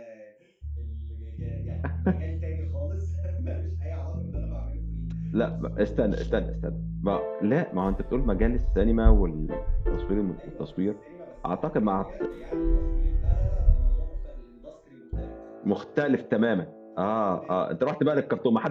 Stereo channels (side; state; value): both; identical; correlation 1.00